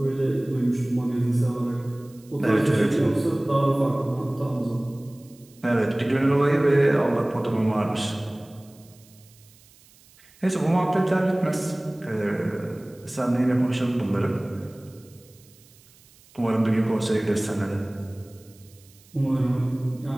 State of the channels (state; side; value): noise; right; hiss, 27 dB below the sound